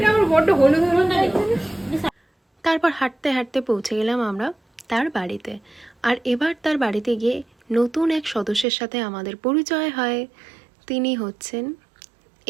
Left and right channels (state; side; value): drops out; left; at 8.7 s